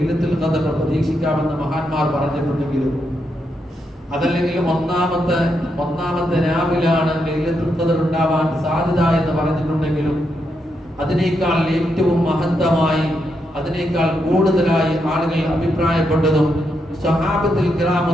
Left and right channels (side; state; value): both; normal; correlation 0.82